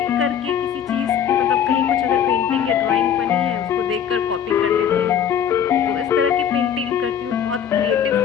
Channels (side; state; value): right; quieter; 8.6 dB